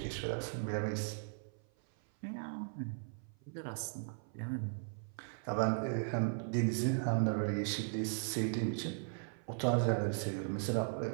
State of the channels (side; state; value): left; silent; 53 dB below the other